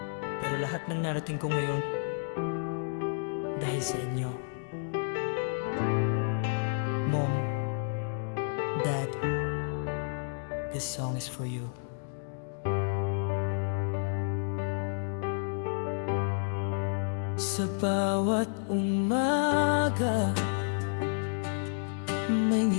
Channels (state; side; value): silent; right; digital silence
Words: pero lahat ng narating ko ngayon dahil sa inyo. Mom, Dad, this song is for you. Sa bawat umaga, may